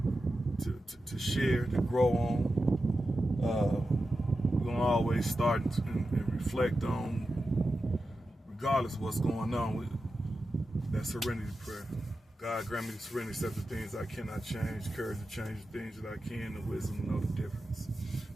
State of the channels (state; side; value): normal; both; correlation 0.91